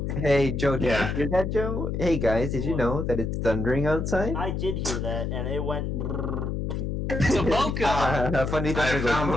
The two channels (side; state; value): left; noise; hum, 2 dB below the sound